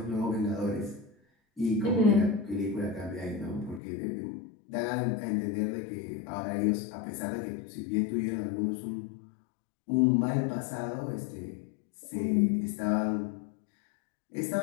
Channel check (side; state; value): right; drops out; at 3.8 s